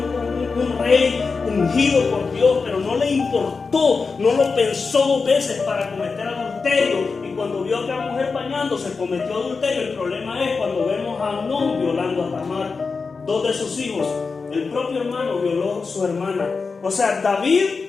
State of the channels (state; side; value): quieter; right; 4.7 dB